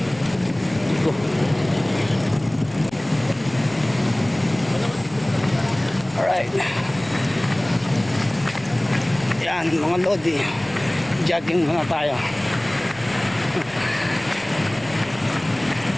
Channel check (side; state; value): left; noise; hum, 23 dB below the sound